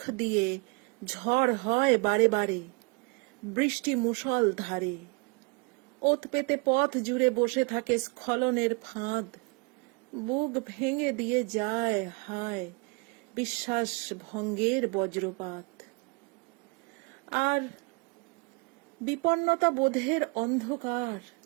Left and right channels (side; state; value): left; quieter; 31.7 dB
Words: দিয়ে ঝড় হয় বারে বারে, বৃষ্টি মুষল ধারে। ওত পেতে পথ জুড়ে বসে থাকে স্খলনের ফাঁদ, বুক ভেঙে দিয়ে যায় হায় বিশ্বাস ভঙ্গের বজ্রপাত। আর বিপন্নতা বোধের অন্ধকার,